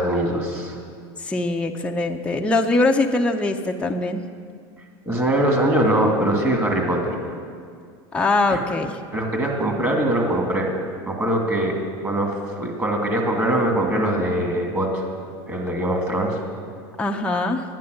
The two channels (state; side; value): normal; both; correlation 0.50